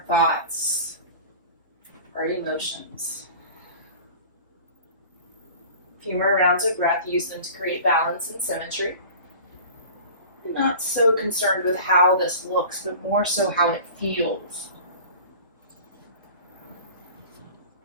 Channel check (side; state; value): both; inverted; correlation -0.40